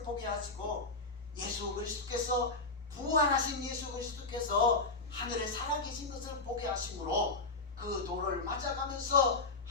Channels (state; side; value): quieter; right; 3.6 dB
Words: 보게 하시고, 예수 그리스도께서, 부활하신 예수 그리스도께서 하늘에 살아계신 것을 보게 하심으로 그 돌을 맞아가면서